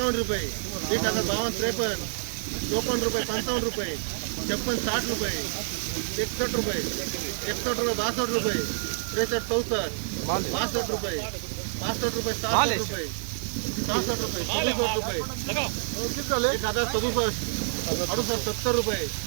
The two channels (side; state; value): left; silent; 60 dB below the other